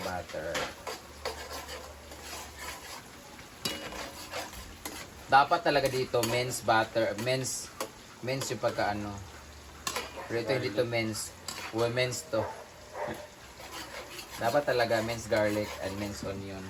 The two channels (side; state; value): both; identical; correlation 1.00